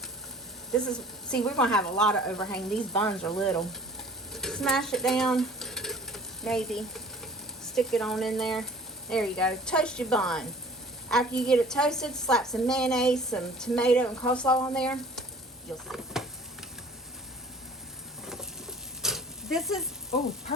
This is, see, we're going to have a lot of overhang. These buns are little. Smash it down, maybe. Stick it on in there. There you go. Toast your bun. After you get it toasted, slap some mayonnaise, some tomato, and coleslaw on there. You'll see. This is, oh,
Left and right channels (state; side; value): normal; both; correlation 0.49